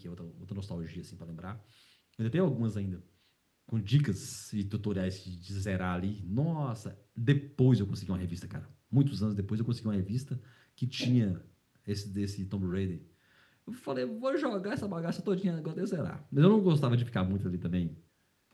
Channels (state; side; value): identical; both; correlation 1.00